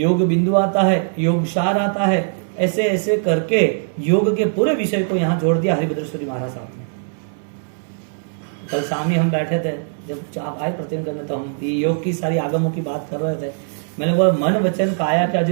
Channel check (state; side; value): silent; left; 66 dB below the other